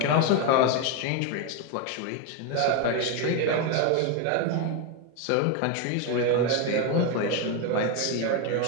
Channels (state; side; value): different; both; correlation 0.02